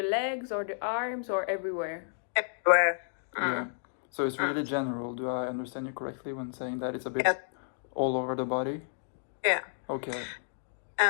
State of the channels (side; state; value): right; silent; digital silence